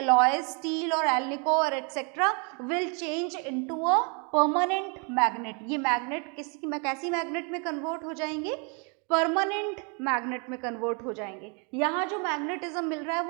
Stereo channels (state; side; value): quieter; left; 35.3 dB